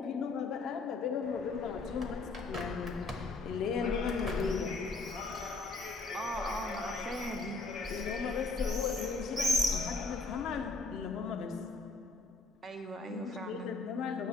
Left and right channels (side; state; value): right; quieter; 3.7 dB